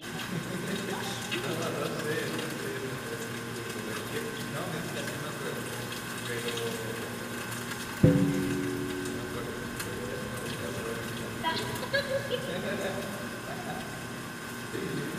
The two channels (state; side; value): identical; both; correlation 1.00